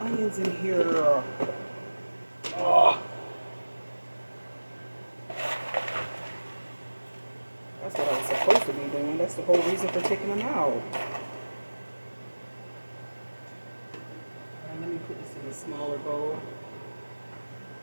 in here? Oh. That's what I was supposed to be doing. That's the whole reason for taking them out. Alright, let me put this in a smaller bowl.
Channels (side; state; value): both; inverted; correlation -1.00